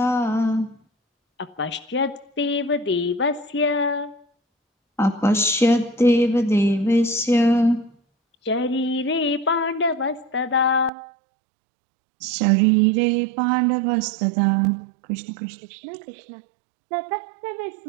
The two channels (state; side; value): drops out; left; at 10.9 s